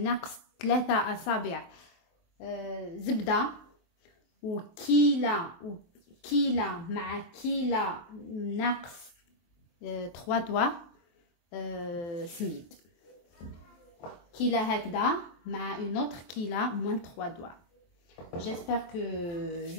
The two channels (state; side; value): late; right; 23 ms